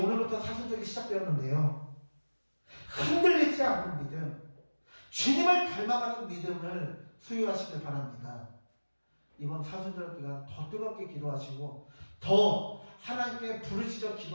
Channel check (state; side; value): inverted; both; correlation -1.00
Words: 사순절이 시작되었는데요. 흔들리지 않는 믿음, 주님을 닮아가는 믿음을 소유하시길 바랍니다. 이번 사순절 기간 더 뜨겁게 기도하시고 더 하나님께 부르짖어